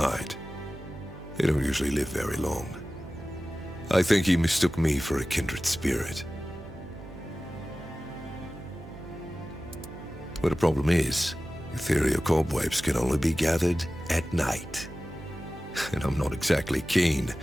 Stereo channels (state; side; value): noise; right; hum, 15 dB below the sound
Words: They don't usually live very long. I think he mistook me for a kindred spirit. But the problem is, ethereal cobwebs can only be gathered at night. And I'm not exactly keen